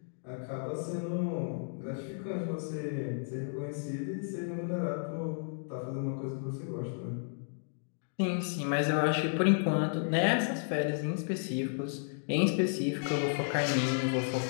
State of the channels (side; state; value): right; silent; digital silence